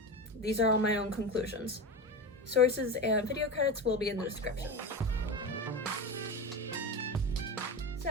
these are all my own conclusions. Sources and video credits will be in the description.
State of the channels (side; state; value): both; normal; correlation 0.23